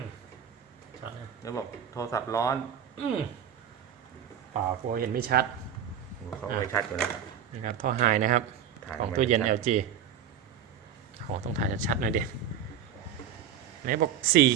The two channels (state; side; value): quieter; left; 8.6 dB